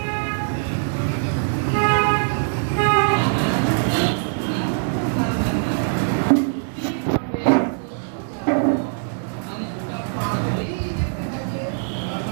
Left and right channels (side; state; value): left; silent; 64 dB below the other